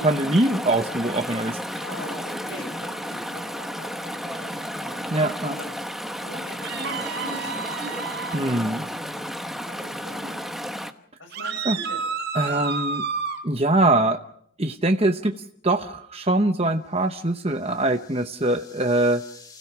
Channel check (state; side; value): normal; both; correlation 0.44